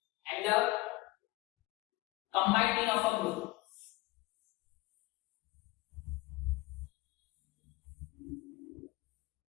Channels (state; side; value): quieter; right; 20.7 dB